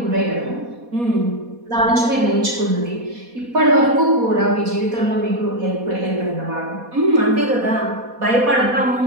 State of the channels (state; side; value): late; left; 4.2 ms